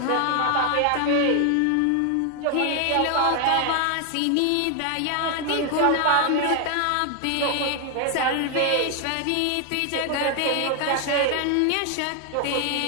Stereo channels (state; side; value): different; both; correlation 0.00